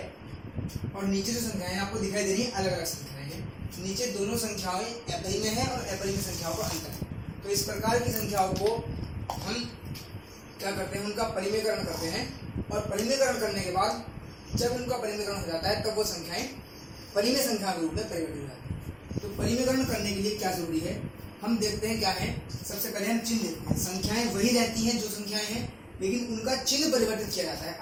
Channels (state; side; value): identical; both; correlation 1.00